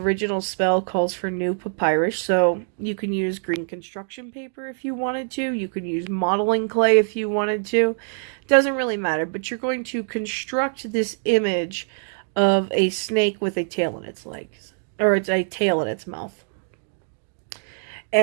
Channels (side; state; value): left; silent; 63 dB below the other